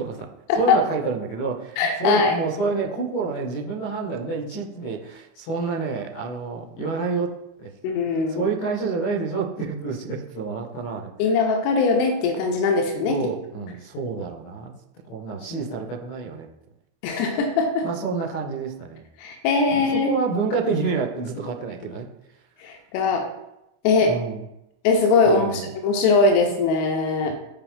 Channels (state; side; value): late; right; 25 ms